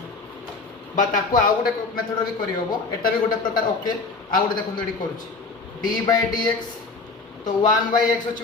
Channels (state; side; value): quieter; right; 4.1 dB